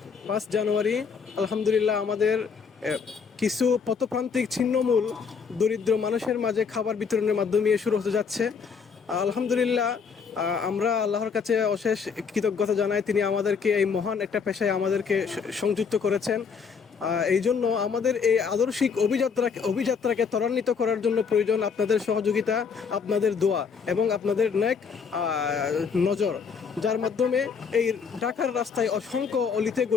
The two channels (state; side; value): quieter; right; 5.9 dB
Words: 5 জানুয়ারি আলহামদুলিল্লাহ আমাদের কিছু পথপ্রান্তিক ছিন্নমূল দরিদ্র মানুষের মাঝে খাবার বিতরণের মাধ্যমে শুরু হতে যাচ্ছে। আলহামদুলিল্লাহ আমরা আল্লাহর কাছে অশেষ কৃতজ্ঞতা জানাই, তিনি আমাদেরকে এই মহান একটা পেশায় আমাদেরকে সংযুক্ত করেছেন। এই জন্য আমাদের এই আদর্শিক অভিযাত্রাকে ত্বরান্বিত করার জন্য প্রয়োজন আপনাদের সহযোগিতা, আপনাদের দোয়া এবং আপনাদের নেক নজর, যার মাধ্যমে এই ঢাকার রাস্তায় অসংখ্য অলিতে